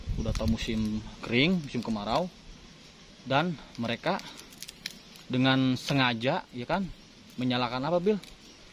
Udah tahu musim kering, musim kemarau, dan mereka dengan sengaja ya kan menyalakan apa Bil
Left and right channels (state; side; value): identical; both; correlation 1.00